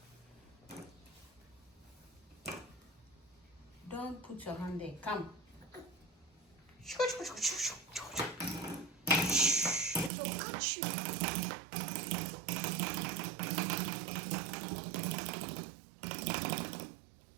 Don't put your hand there. Come. It will catch you.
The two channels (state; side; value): drops out; left; at 10.1 s